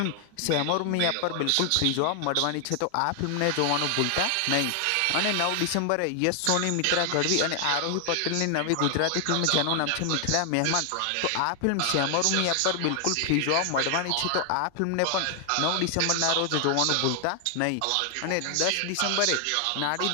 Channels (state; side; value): different; both; correlation 0.00